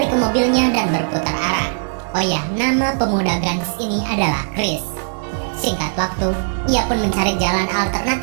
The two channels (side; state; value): left; silent; 58 dB below the other